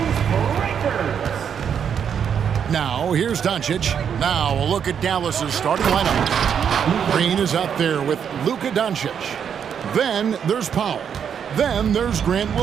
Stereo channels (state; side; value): quieter; left; 7.8 dB